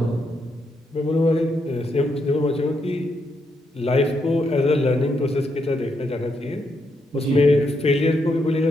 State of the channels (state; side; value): normal; both; correlation 0.79